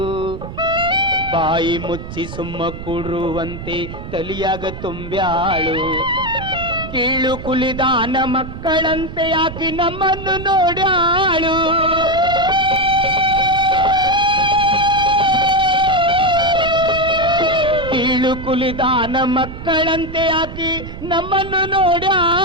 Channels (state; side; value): noise; right; rumble, 10 dB below the sound